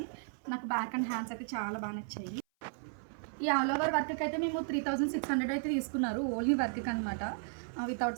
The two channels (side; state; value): left; silent; 55 dB below the other